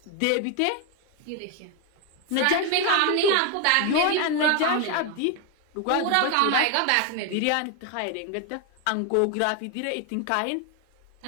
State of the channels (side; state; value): both; different; correlation 0.01